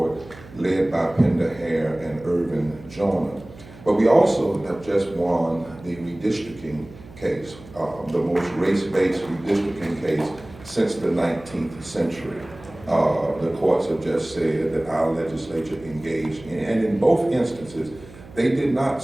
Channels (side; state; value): right; noise; hum, 19 dB below the sound